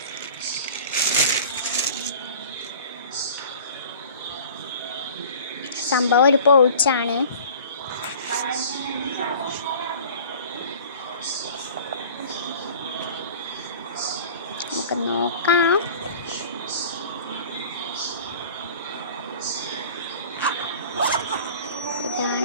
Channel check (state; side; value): inverted; both; correlation -0.44